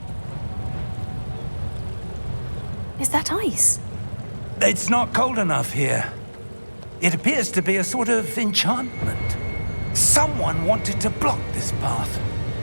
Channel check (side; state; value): both; inverted; correlation -1.00